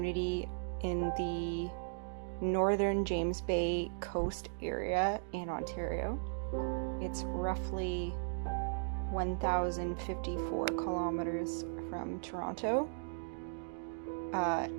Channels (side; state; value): left; silent; digital silence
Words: in the northern James Bay coast area in Ontario. It's roughly 1,054 kilometers from Toronto,